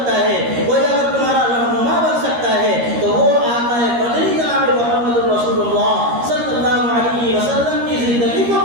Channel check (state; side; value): late; left; 13 ms